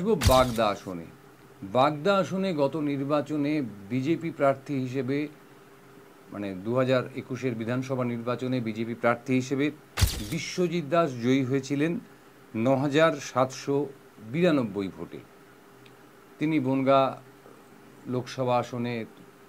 বাগদা আসনে। বাগদা আসনে গত নির্বাচনে বিজেপি প্রার্থী হিসেবে, 2021-এর বিধানসভা নির্বাচনে বিজেপি প্রার্থী হিসেবে বিশ্বজিৎ দাস জয়ী হয়েছিলেন 9,792 ভোটে। তিনি বনগাঁ লোকসভা আসনে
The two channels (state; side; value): identical; both; correlation 1.00